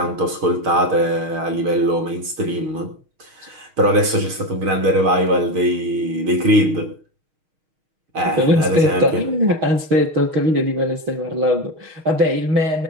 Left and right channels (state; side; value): late; left; 6.5 ms